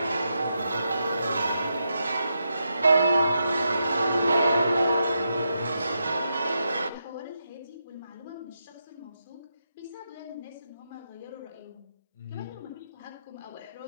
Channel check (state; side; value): inverted; both; correlation -0.84